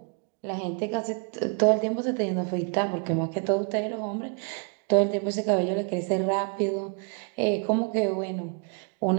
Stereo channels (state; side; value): quieter; left; 37.6 dB